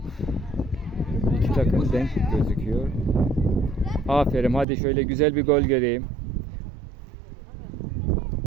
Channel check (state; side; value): drops out; left; at 4.7 s